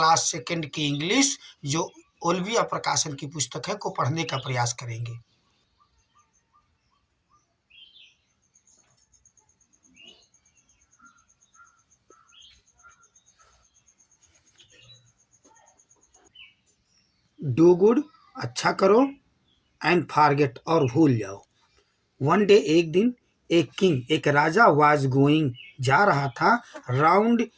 सेकंड की इंग्लिश जो ओल्विया प्रकाशन की पुस्तक है को पढ़ने का प्रयास करेंगे। डू गुड, अच्छा करो, एंड फॉरगेट और भूल जाओ। वन डे, एक दिन, एक किंग एक राजा वाज गोइंग जा रहा था राउंड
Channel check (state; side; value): identical; both; correlation 1.00